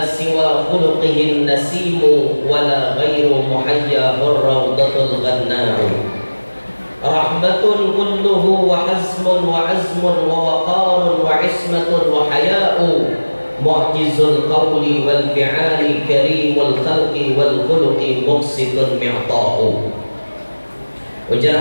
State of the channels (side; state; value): both; inverted; correlation -1.00